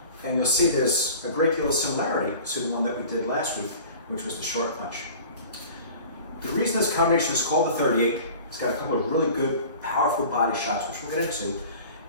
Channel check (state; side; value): inverted; both; correlation -0.42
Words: And you'll see there's a great deal of similarity to the one that we did last week, which was the short punch. The reason this combination is called the 38, it's got a couple of really good, powerful body shots, which we'll get into.